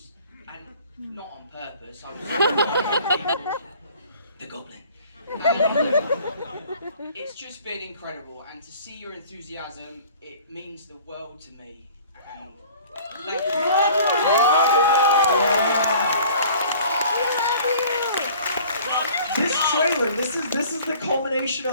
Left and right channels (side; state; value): both; inverted; correlation -0.49